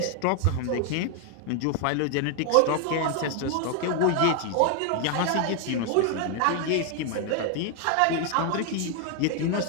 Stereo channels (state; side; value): different; both; correlation 0.00